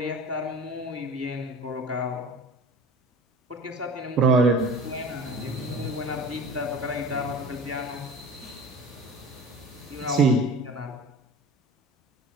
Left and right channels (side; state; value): both; normal; correlation 0.38